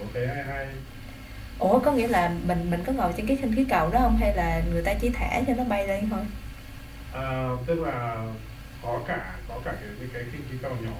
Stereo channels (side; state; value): both; identical; correlation 1.00